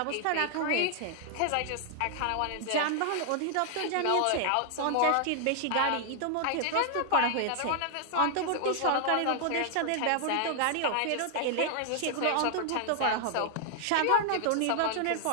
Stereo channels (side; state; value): both; different; correlation 0.00